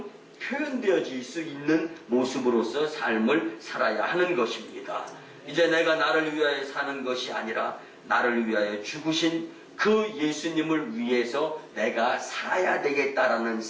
표현되어질 수 있는 모습으로서 삶을 살아야 하는 것입니다. 이제 내가 나를 위하여 사는 것이 아니라 나를 위하여 죽으신 그 예수님을 위해서 내가 살아야 되겠다라는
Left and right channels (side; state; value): both; identical; correlation 1.00